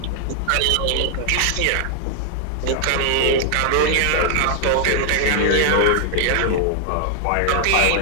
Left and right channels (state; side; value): different; both; correlation 0.00